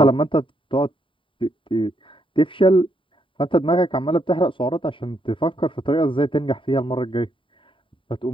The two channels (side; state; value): right; late; 0.25 ms